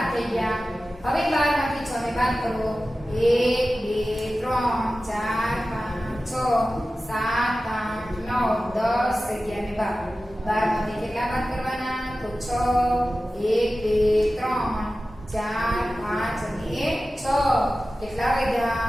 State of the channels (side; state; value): both; normal; correlation 0.95